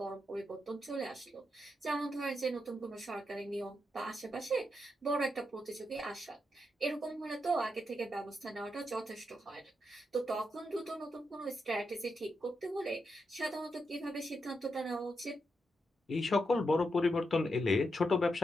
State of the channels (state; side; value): normal; both; correlation 0.84